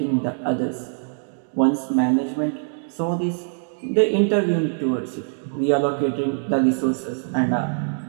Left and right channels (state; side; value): silent; left; digital silence